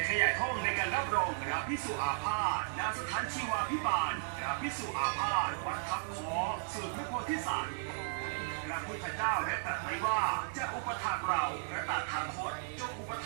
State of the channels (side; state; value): left; silent; 54 dB below the other